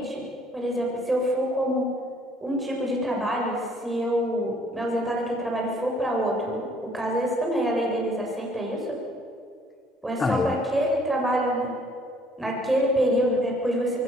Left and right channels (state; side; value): normal; both; correlation 0.61